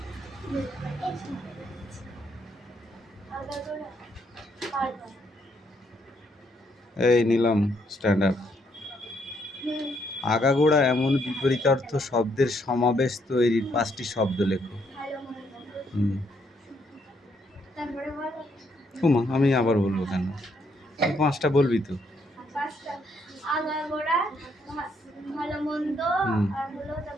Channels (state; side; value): normal; both; correlation 0.73